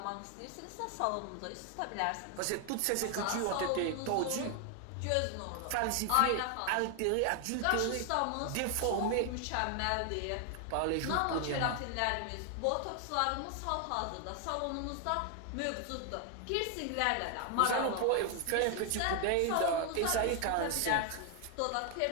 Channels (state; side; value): different; both; correlation 0.00